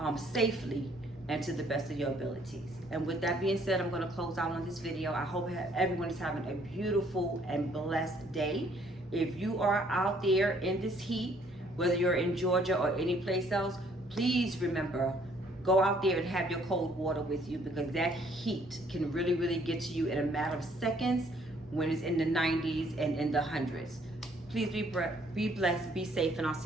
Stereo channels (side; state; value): both; normal; correlation 0.63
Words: safely and to the best of your abilities. And with that being said, I'm going to close out on this video. I hope everyone is having a beautiful and blessed day. If you are out there in this heat, whether you're in Georgia or any place else, please remember, go out there and have your cold water with you, because that heat can really, really get to you in a matter of seconds when it's in the 90s and in the hundreds. Please be blessed, be safe, and I'll